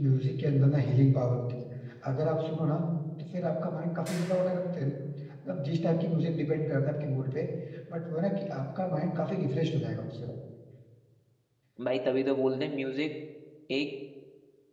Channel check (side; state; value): both; identical; correlation 1.00